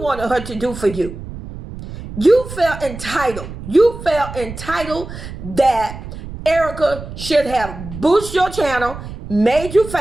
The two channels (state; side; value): noise; right; rumble, 11 dB below the sound